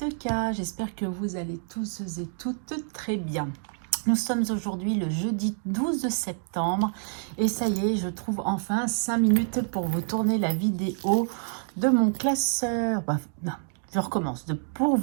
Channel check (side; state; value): left; silent; 60 dB below the other